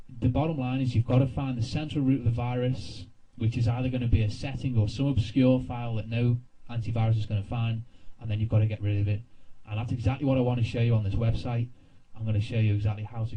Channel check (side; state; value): both; identical; correlation 1.00